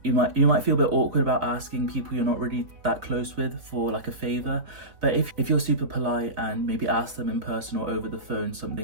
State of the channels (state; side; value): late; left; 3.7 ms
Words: You might feel a bit awkward about asking people you're not really that close with for a favour, but if you're super polite and maybe ask them in person or over the phone